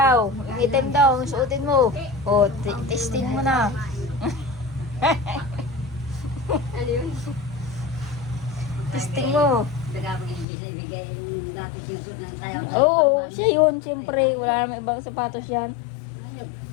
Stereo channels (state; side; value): drops out; right; at 10.5 s